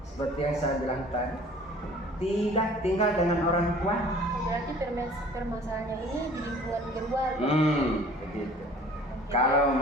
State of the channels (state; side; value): normal; both; correlation 0.49